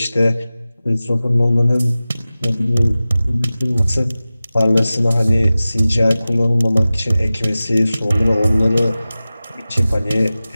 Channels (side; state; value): both; inverted; correlation -0.96